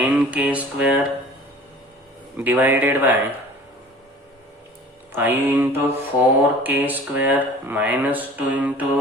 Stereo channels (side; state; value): both; normal; correlation 0.45